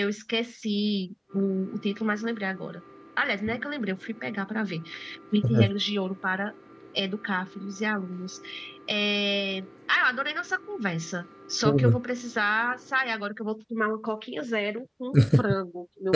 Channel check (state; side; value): identical; both; correlation 1.00